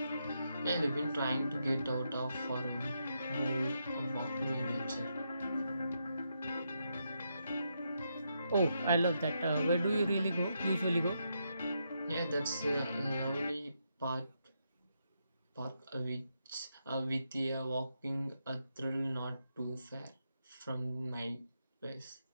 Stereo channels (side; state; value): both; inverted; correlation -0.81